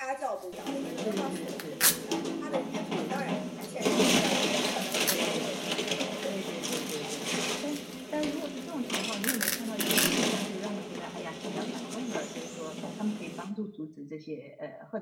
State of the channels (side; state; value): both; identical; correlation 1.00